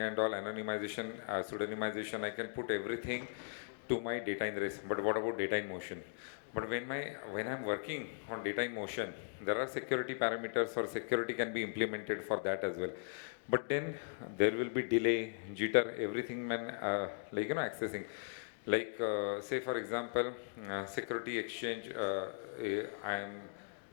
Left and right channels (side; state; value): right; silent; digital silence